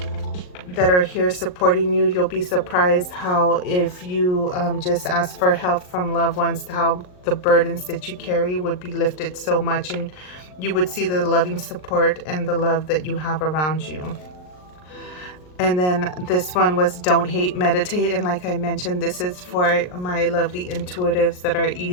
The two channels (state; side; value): late; right; 39 ms